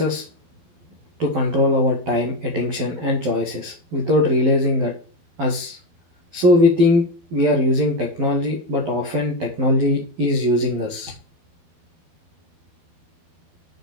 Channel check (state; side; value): late; left; 12 ms